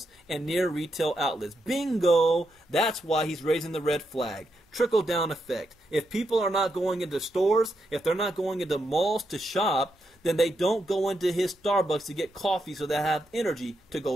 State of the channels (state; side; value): normal; both; correlation 0.82